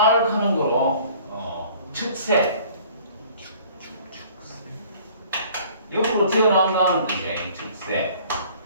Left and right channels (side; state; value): both; inverted; correlation -0.52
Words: 하는 거로 축세. 옆으로 튀어나온다는 뜻이에요. 축세.